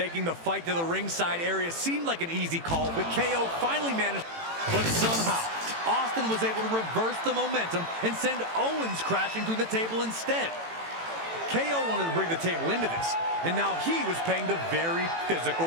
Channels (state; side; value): late; left; 18 ms